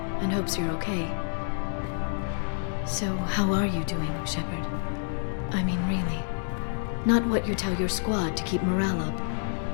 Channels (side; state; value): right; silent; digital silence